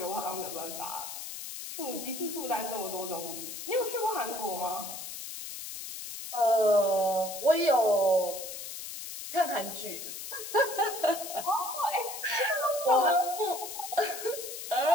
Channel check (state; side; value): noise; left; hiss, 8 dB below the sound